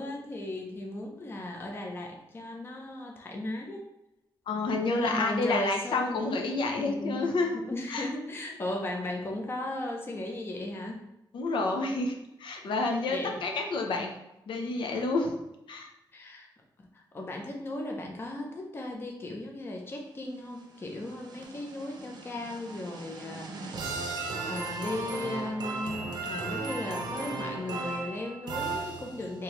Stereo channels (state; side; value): normal; both; correlation 0.59